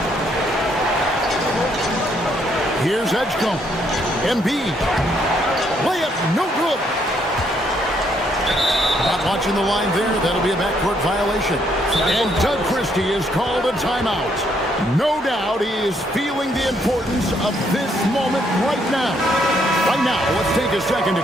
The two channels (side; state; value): both; normal; correlation 0.71